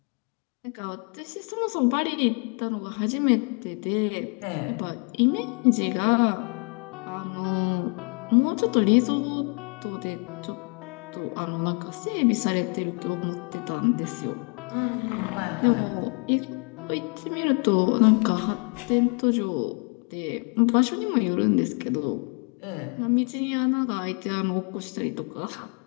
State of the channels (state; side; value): quieter; right; 36.7 dB